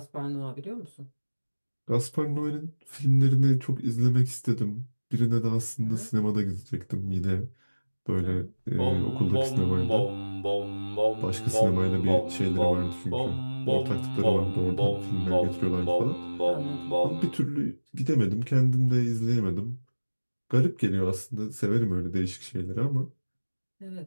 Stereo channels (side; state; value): both; inverted; correlation -1.00